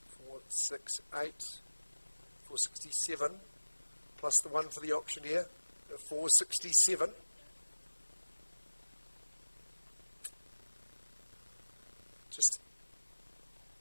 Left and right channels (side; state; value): both; inverted; correlation -1.00